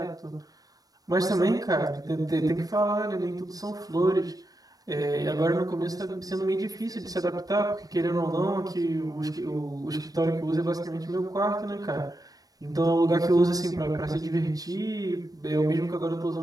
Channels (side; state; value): left; late; 0.18 ms